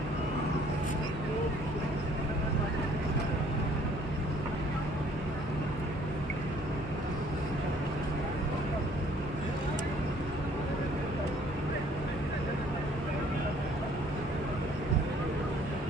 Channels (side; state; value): both; normal; correlation 0.59